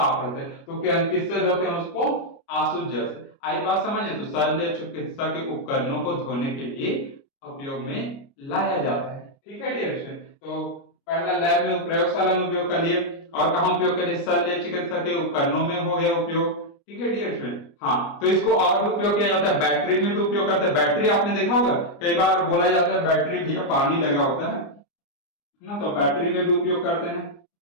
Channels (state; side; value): late; right; 29 ms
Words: रहते हैं, तो क्या किससे धोते हैं उसको, आसुत जल से। आई बात समझे, तो शल्य चिकित्सा के उपकरणों को धोने के लिए उपयोग में लाया जाता है, ठीक है डियर स्टूडेंट। तो पहला लैब में, प्रयोगशाला में उपयोग कर लिए, और कहां उपयोग करें, शल्य चिकित्सा के उपकरणों में हो गया उपयोग, ठीक है डियर स्टूडेंट। हाँ, तो इसको और भी उपयोग किया जाता है, बैटरी में भी उपयोग करते हैं। बैटरी आपने देखा होगा, कई बार बोला जाता है बैटरी भी पानी लगा होता है ना, तो बैटरी में भी उपयोग करते हैं।